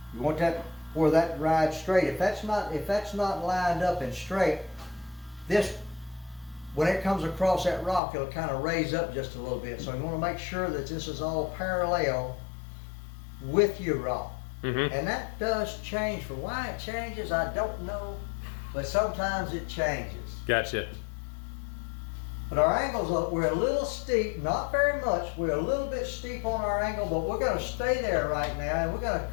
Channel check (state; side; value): drops out; right; at 8.0 s